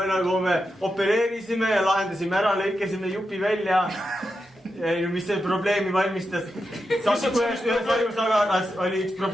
nagu me opereerisime ja lahendasime ära, lõikasime jupi välja. Mis see probleemi valmistas? Ühes ajusaganas oli üks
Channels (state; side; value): normal; both; correlation 0.88